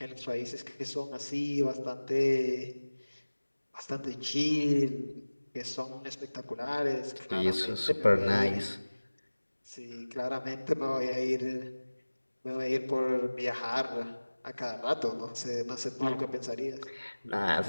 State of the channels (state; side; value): inverted; both; correlation -1.00